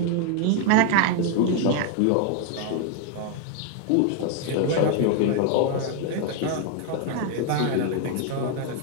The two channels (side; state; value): both; different; correlation 0.00